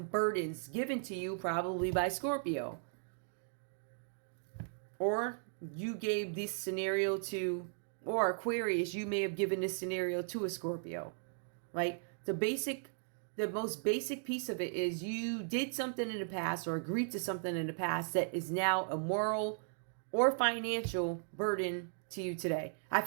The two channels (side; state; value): left; silent; digital silence